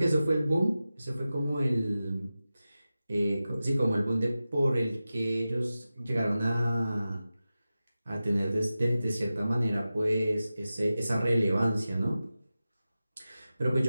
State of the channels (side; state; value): both; inverted; correlation -0.94